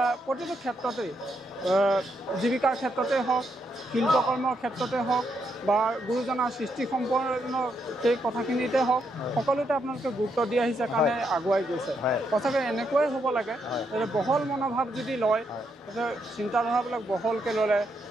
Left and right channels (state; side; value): normal; both; correlation 0.79